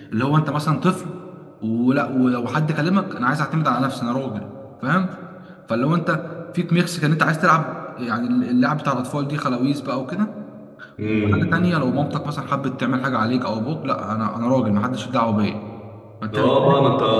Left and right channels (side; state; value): both; identical; correlation 1.00